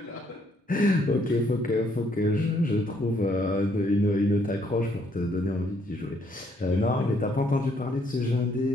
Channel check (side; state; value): both; normal; correlation 0.69